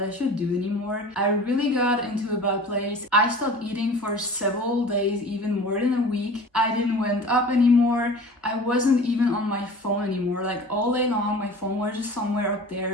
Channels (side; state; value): both; normal; correlation 0.40